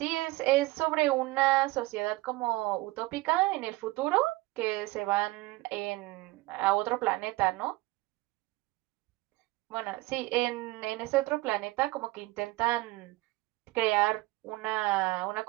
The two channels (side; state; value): left; quieter; 20.5 dB